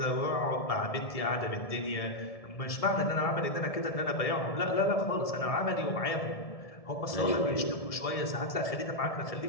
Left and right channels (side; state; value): right; late; 1.7 ms